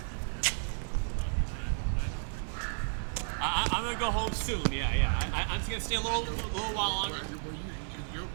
I'm gonna go home soon. Yeah. I'm just gonna stay a little while longer. Well, it's your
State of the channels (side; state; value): left; silent; 56 dB below the other